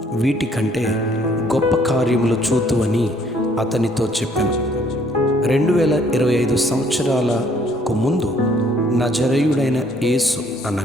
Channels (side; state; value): both; normal; correlation 0.62